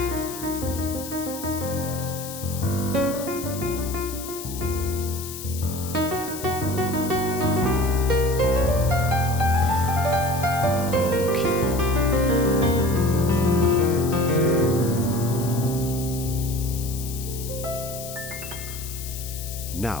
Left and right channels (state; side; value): noise; left; hiss, 10 dB below the sound